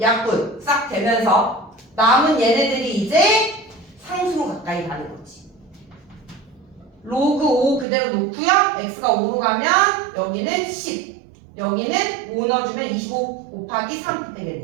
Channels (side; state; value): left; drops out; at 7.9 s